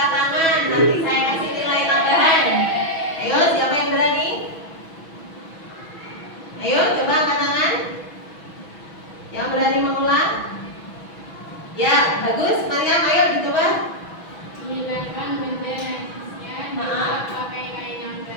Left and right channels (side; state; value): right; late; 6.1 ms